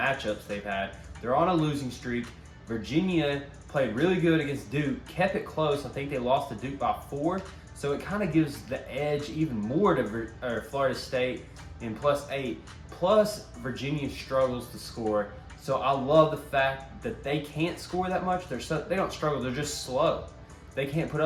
they've had. They're on a losing streak. Virginia played really good against Duke, kept it close. I think they lost to Duke by 4. So it kind of gives the edge even more to Florida State in +8. Plus, Virginia struggles to score. So I love the fact that they can't score that much. They don't struggle. They're just slow. They can't put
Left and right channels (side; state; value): both; identical; correlation 1.00